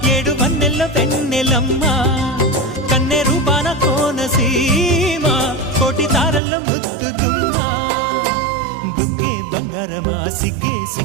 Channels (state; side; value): drops out; left; at 6.4 s